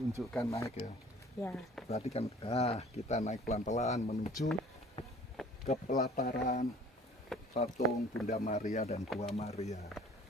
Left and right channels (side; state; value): both; normal; correlation 0.51